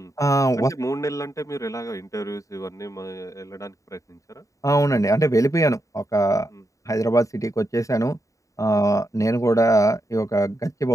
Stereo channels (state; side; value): late; right; 0.16 ms